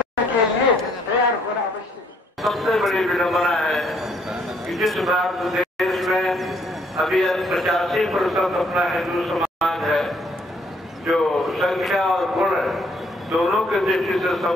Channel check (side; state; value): both; normal; correlation 0.67